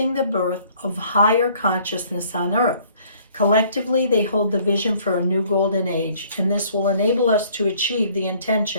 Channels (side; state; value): both; inverted; correlation -0.58